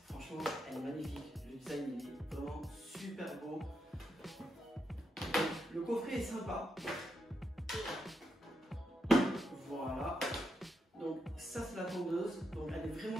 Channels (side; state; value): both; normal; correlation 0.82